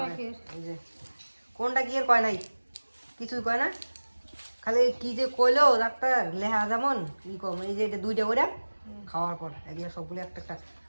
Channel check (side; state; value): both; inverted; correlation -1.00